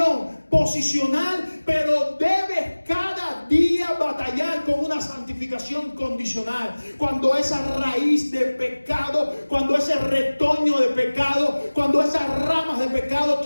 posicional, pero debes cada día batallar con una santificación condicional. Cuando esa raíz de pecado, cuando ese retoño de pecado, cuando esas ramas de pecado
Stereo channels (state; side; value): inverted; both; correlation -1.00